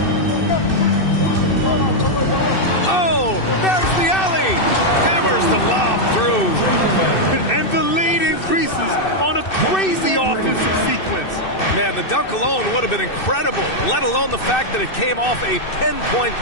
Oh, there's the alley. Hammers the lob through. And the lead increases on a crazy offensive sequence. Man, the dunk alone would have been incredible, let alone the fact that it came off a pinpoint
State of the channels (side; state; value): right; late; 2.6 ms